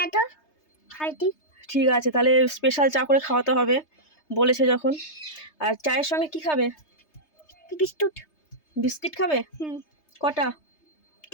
তো খাইতি। ঠিক আছে, তাহলে স্পেশাল চা করে খাওয়াতে হবে বলেছে যখন। আর চায়ের সঙ্গে কি খাবে? বিস্কুট। বিস্কিট খাবে? কটা?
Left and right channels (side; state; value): right; late; 3.3 ms